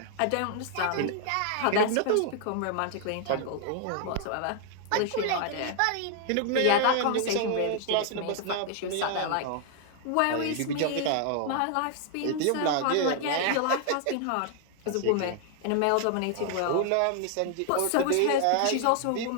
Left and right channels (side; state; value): both; different; correlation 0.00